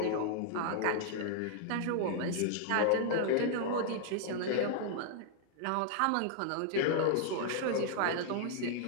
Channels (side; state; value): both; different; correlation 0.00